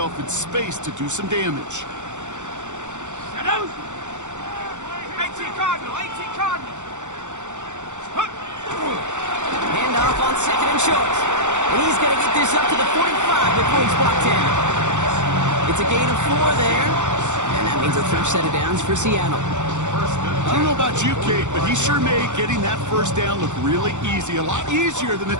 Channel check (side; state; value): left; late; 0.85 ms